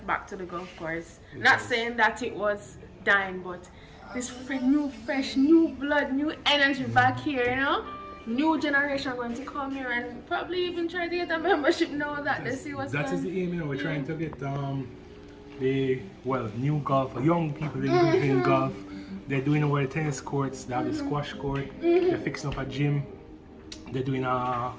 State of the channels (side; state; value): both; identical; correlation 1.00